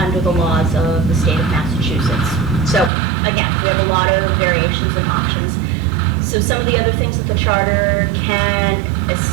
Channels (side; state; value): left; drops out; at 2.9 s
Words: the laws of the state of Massachusetts. So again, we have a lot of variations and options. So some of the other things that the charter can